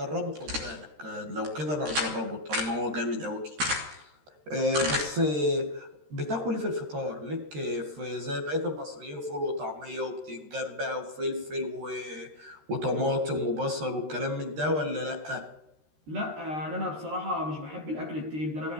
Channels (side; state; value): left; late; 13 ms